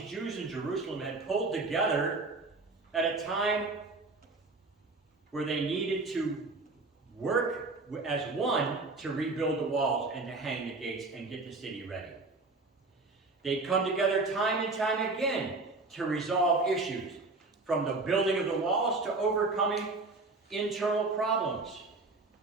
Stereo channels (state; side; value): quieter; left; 3.5 dB